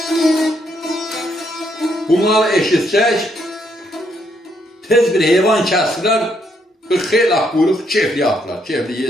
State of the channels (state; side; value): normal; both; correlation 0.74